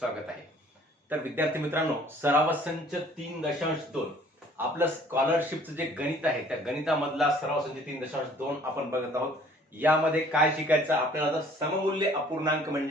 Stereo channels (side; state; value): both; normal; correlation 0.55